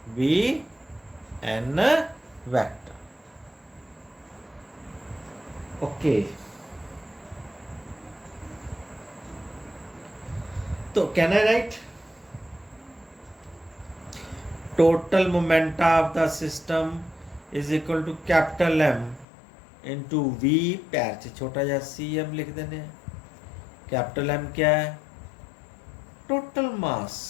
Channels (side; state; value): right; drops out; at 19.2 s